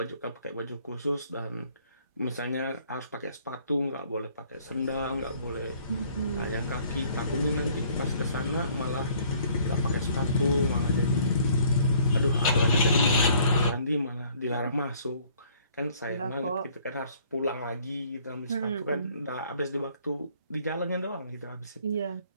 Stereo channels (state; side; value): inverted; both; correlation -0.59